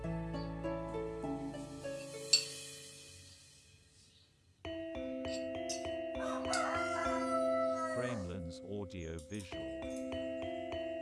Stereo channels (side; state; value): both; identical; correlation 1.00